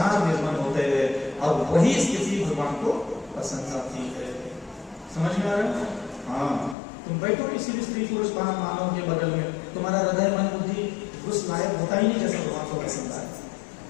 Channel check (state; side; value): drops out; right; at 6.8 s